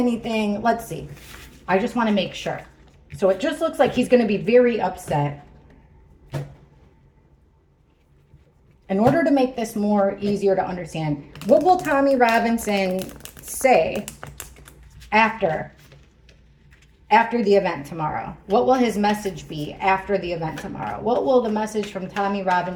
Let's see. I just want to make sure. So it just looks like he's going to be very upset. In order to make this more easier to understand, what will Tommy Robinson say after the event tomorrow? What will his message be after the event tomorrow? What will the message from Tommy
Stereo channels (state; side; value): identical; both; correlation 1.00